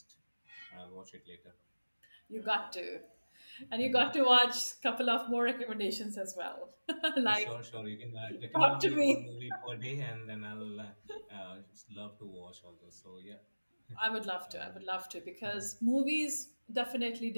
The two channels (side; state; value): both; inverted; correlation -1.00